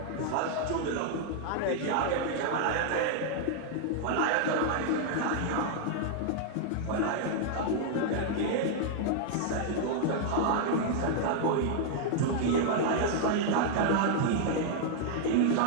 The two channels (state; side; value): different; both; correlation -0.01